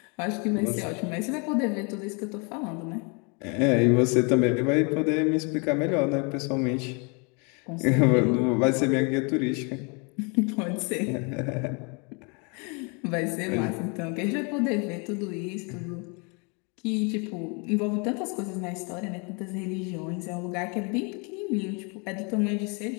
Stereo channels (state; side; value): quieter; right; 33.5 dB